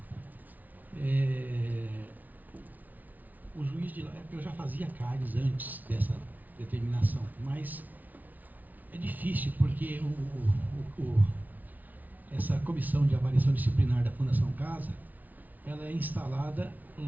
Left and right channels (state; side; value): late; left; 0.078 ms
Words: O juiz de lá, eu já fazia CARES antes dessa determinação, mas é difícil porque essa comissão de avaliação disciplinar da Fundação Casa, ela é instalada